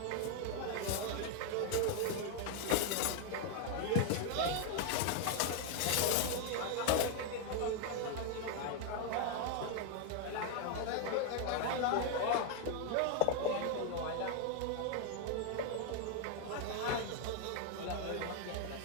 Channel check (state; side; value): different; both; correlation 0.01